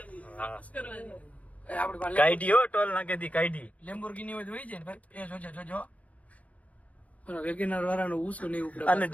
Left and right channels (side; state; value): right; late; 0.068 ms